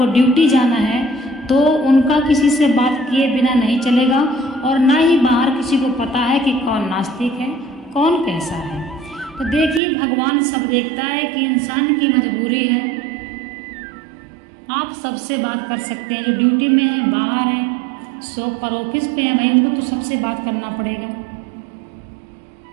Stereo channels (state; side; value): drops out; left; at 9.8 s